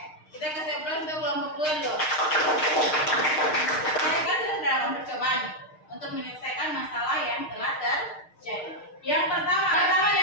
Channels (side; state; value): right; late; 6.5 ms